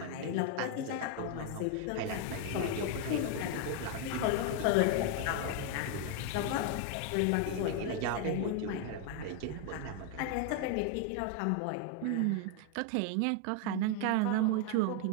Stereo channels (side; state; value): both; different; correlation 0.01